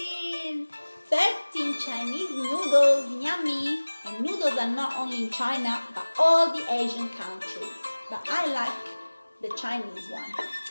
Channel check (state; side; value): inverted; both; correlation -1.00